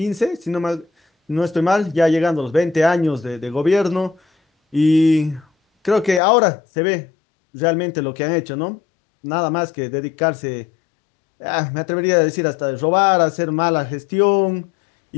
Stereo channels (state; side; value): drops out; right; at 6.2 s